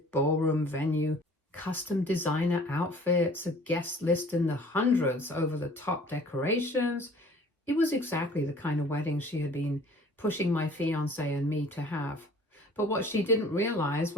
ballroom venue, custom designer outfits, a guest list in the hundreds, over-the-top decorations. It was exactly the kind of wedding she had been pushing my fiance and me to have. But what she didn't realize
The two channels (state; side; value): normal; both; correlation 0.50